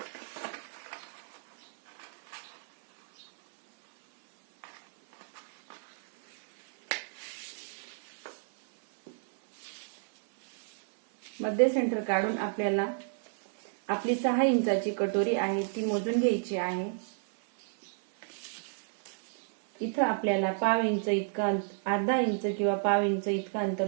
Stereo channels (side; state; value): left; silent; 57 dB below the other